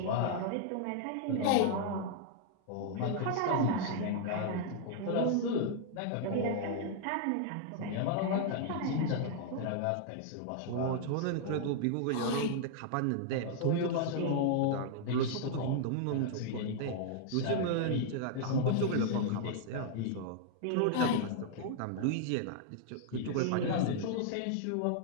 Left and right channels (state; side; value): different; both; correlation -0.01